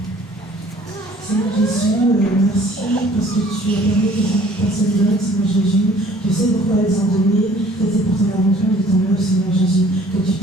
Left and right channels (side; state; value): both; normal; correlation 0.54